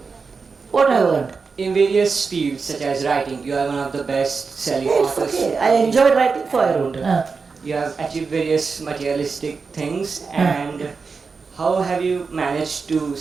What I earned? In various fields such as writing, you are one of the best-selling authors. Okay. I enjoyed writing, so I wrote. You have achieved various materialistic things, and how have you managed to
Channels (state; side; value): quieter; left; 4.9 dB